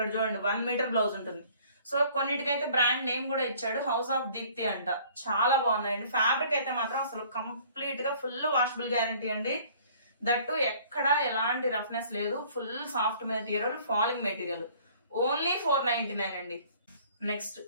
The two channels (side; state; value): both; inverted; correlation -0.54